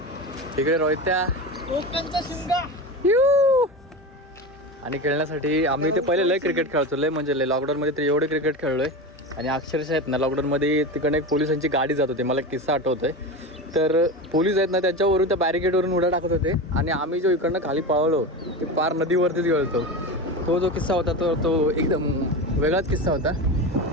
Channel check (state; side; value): normal; both; correlation 0.24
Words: इकडे रोहित्या, कोकणचा शिंगा आणि खेळण्यासाठी आम्ही ते पहिले लय क्रिकेट खेळतो, लय म्हणजे लय. लॉकडाऊनमध्ये तर एवढे क्रिकेट खेळलोय आणि अक्षरशः आहेत ना लॉकडाऊनमध्ये तिकडे एक पोलिसांची गाडी जात होती, मला किस्सा आठवतोय. तर पोलीस आहेत ना त्याच्यावरून त्या बॅरिकेडवरून उड्या टाकत होते आणि आम्ही जो इकडनं खाली पळलो ते पार नदीवरतीच गेलतो. तो जो किस्सा होता तो एकदम वेगळाच किस्सा होता.